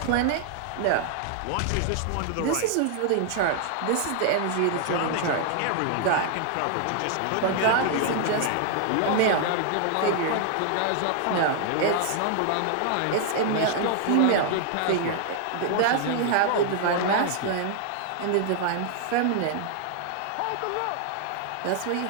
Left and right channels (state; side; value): different; both; correlation 0.00